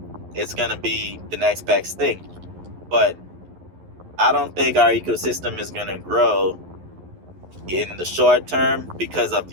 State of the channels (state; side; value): late; left; 11 ms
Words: It's going to be the next best thing. But I don't think our ecosystem is going to grow in the short term because of